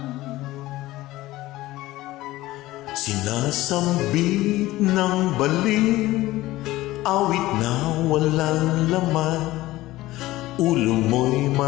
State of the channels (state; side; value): quieter; right; 17.3 dB